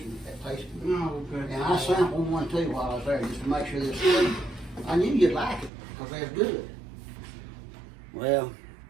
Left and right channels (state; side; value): drops out; left; at 5.7 s